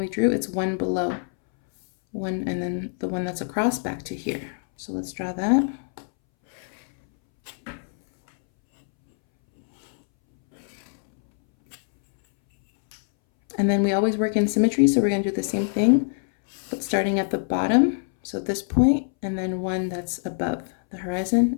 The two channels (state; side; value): silent; right; 62 dB below the other